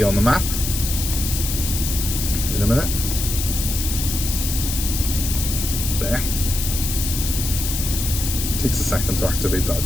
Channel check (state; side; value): noise; left; hiss, 4 dB below the sound